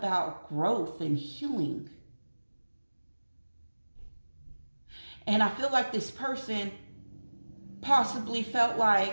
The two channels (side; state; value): both; inverted; correlation -1.00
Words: growth and healing. And I feel like this person possibly felt